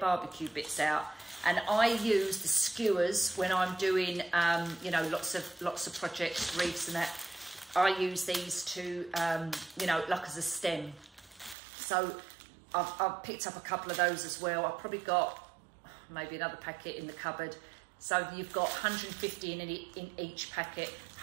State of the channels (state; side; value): drops out; left; at 11.6 s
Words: bits out. And I use the skewers when I'm doing, you know, lots of projects, wreaths and that. I use these to, you know, like as a stem. So I've picked up a couple of those as well. I've probably got maybe another packet in the cupboard. So you've got 150 in each packet.